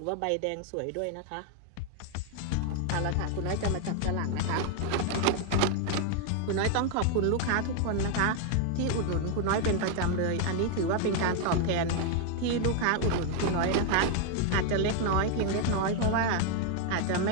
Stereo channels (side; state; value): both; different; correlation 0.00